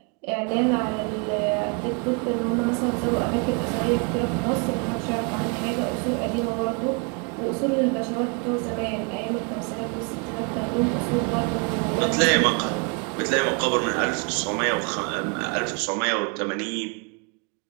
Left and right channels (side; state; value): left; quieter; 34.6 dB